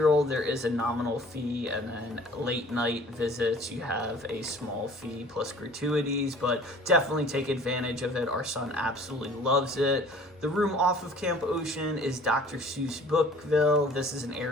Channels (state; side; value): normal; both; correlation 0.50